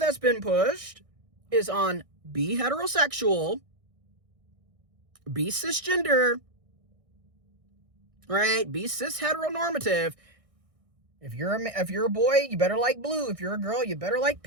been pushed is on be heterosexual, be cisgender, right? Be cis heteronormative, If you're a boy, you better like blue. If you're a girl, you better like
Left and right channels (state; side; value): late; left; 1.6 ms